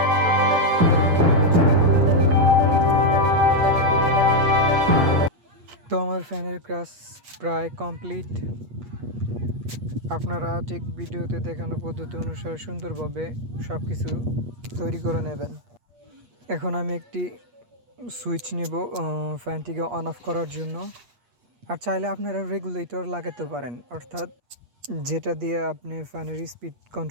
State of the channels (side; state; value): left; late; 8.4 ms